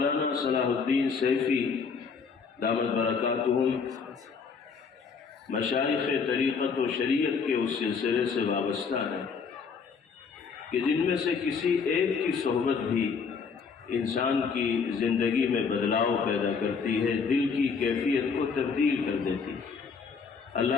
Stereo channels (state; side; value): quieter; right; 5.6 dB